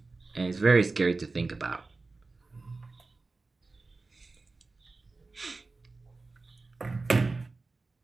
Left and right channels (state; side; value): quieter; left; 3.7 dB